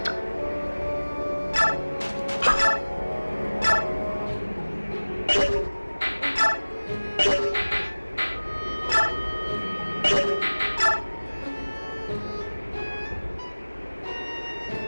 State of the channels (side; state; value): both; inverted; correlation -1.00